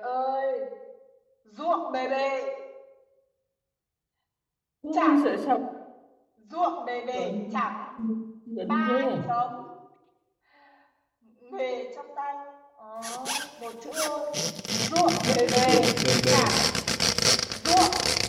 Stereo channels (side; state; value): both; identical; correlation 1.00